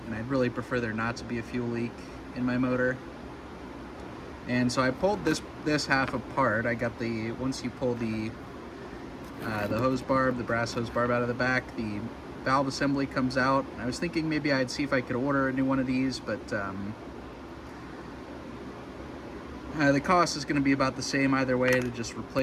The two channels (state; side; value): identical; both; correlation 1.00